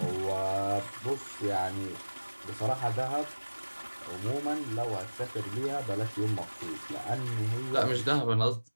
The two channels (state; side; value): inverted; both; correlation -1.00